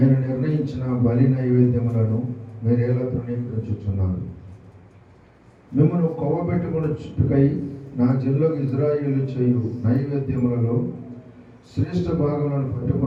నిర్ణయించిన బలి నైవేద్యములను మీరేలా తృణీకరించుచున్నారు. మిమ్మల్ని కొవ్వబెట్టుకుని చుట్టుకై నా జిల్లాకు ఇజ్రాయేలు చేయు నైవేద్యములలో శ్రేష్ఠ భాగములను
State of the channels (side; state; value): both; identical; correlation 1.00